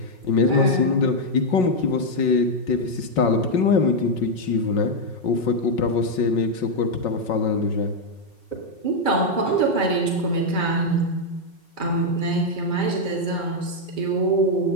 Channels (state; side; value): late; right; 5.4 ms